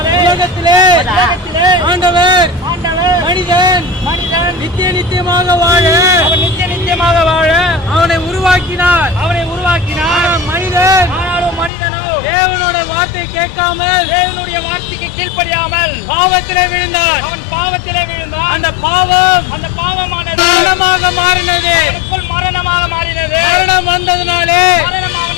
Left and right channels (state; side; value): drops out; right; at 11.7 s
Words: உலகத்திலே ஆண்டவர் மனிதன் நித்தியமாக வாழ அவனை உருவாக்கினார். மனிதனோ தேவனோட வார்த்தை கேட்காமல் தேவனுடைய வார்த்தைக்கு கீழ்ப்படியாமல் பாவத்திலே விழுந்தார். அந்த பாவமானது மரணமாக மாறினது. மரணம் வந்ததினாலே